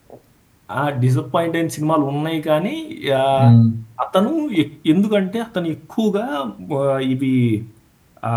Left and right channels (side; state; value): both; identical; correlation 1.00